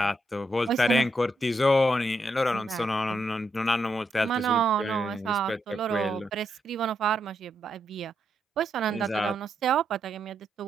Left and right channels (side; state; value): both; normal; correlation 0.81